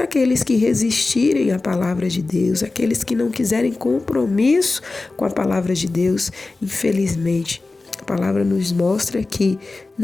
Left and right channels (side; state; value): right; quieter; 3.5 dB